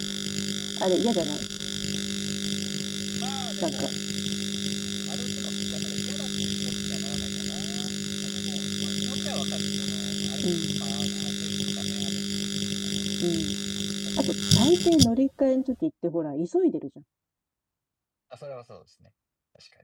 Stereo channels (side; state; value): both; identical; correlation 1.00